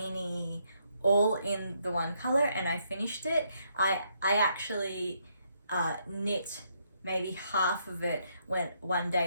all in the one color, and I finished it. I actually knit maybe half of it one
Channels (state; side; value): inverted; both; correlation -0.74